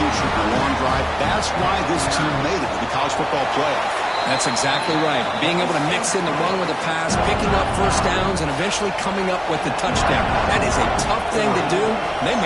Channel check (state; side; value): identical; both; correlation 1.00